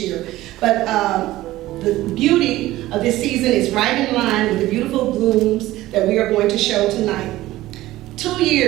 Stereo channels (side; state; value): left; quieter; 16.4 dB